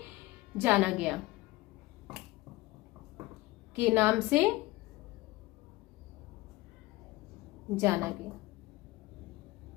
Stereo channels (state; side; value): quieter; right; 20.0 dB